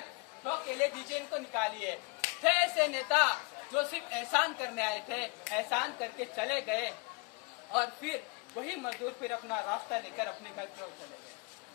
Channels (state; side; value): quieter; right; 29.5 dB